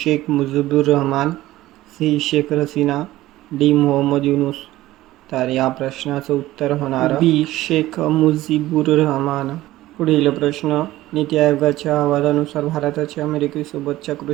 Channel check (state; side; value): quieter; left; 16.1 dB